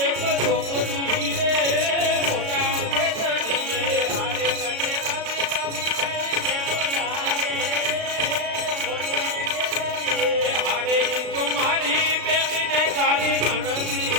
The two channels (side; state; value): left; late; 36 ms